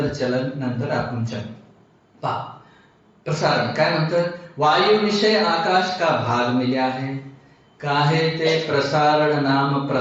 चलन, नंतर आकुंचन. पहा, प्रसारण काय म्हणतं? वायु विषय आकाश का भाग मिला है, काहे ते प्रसारण नाम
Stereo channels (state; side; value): identical; both; correlation 1.00